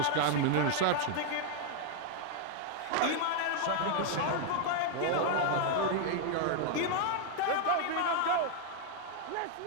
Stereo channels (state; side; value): different; both; correlation 0.00